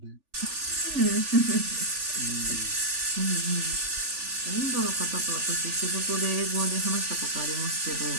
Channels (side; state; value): left; late; 3.4 ms